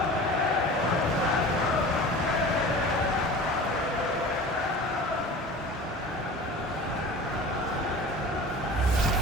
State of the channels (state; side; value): normal; both; correlation 0.38